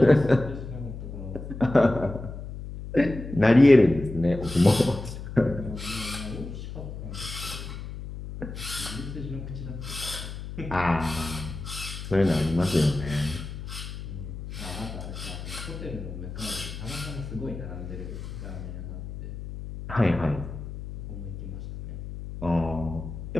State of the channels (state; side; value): noise; left; hum, 9 dB below the sound